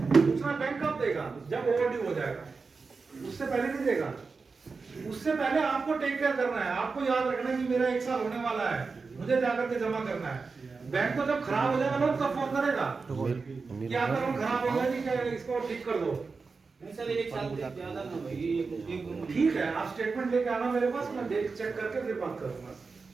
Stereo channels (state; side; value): quieter; left; 4.5 dB